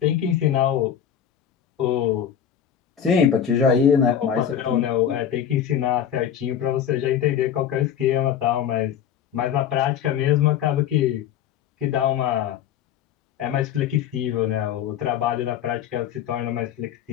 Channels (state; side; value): quieter; right; 9.2 dB